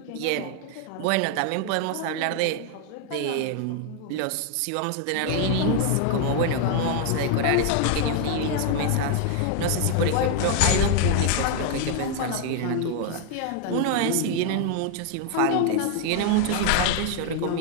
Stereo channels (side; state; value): both; different; correlation 0.00